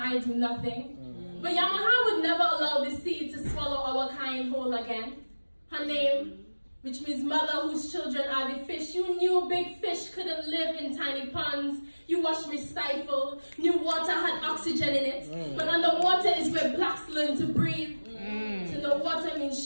do nothing. But Yamaha would never allow the sea to swallow our kind whole again. Her name, which means mother whose children are the fish. You knew big fish couldn't live in tiny ponds. You watched me stifle. Knew water had oxygen in it. But underwater is where blacks learn to breathe. To know water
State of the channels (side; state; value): both; inverted; correlation -1.00